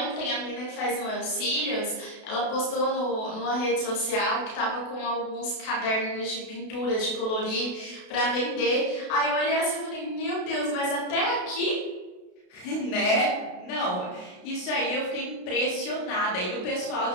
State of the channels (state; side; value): late; right; 32 ms